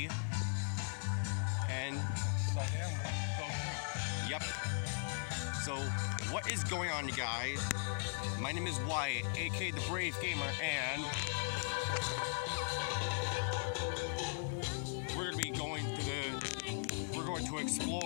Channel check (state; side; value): silent; right; 52 dB below the other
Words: And So then we'll go through. yep. So what is going on, you guys? My name is Wyatt, aka the Brave Gamer, and we're going to